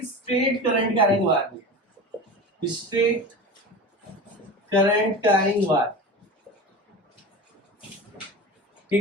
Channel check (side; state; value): both; normal; correlation 0.30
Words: straight current carrying wire, straight current carrying wire,